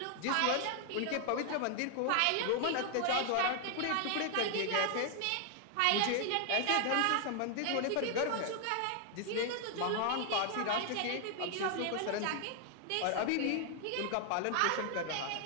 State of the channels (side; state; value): both; different; correlation 0.00